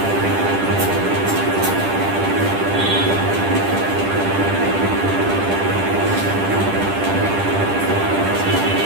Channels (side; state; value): left; late; 10 ms